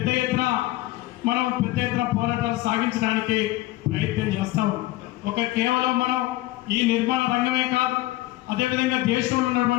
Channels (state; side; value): quieter; right; 17.5 dB